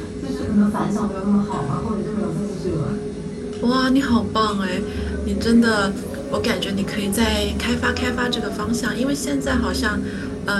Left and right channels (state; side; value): identical; both; correlation 1.00